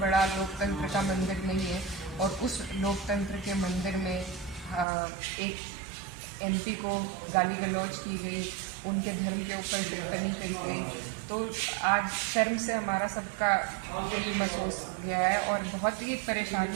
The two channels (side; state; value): left; drops out; at 4.9 s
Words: लोकतंत्र का मंदिर नहीं है और उस लोकतंत्र के मंदिर में एक एमपी को गाली गलौज की गई, उनके धर्म के ऊपर टिप्पणी करी गई। तो आज शर्म से हमारा सबका दिल महसूस गया है और बहुत ही